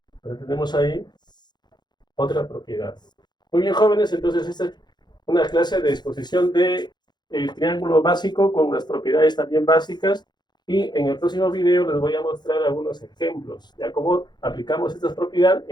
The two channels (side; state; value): right; late; 0.21 ms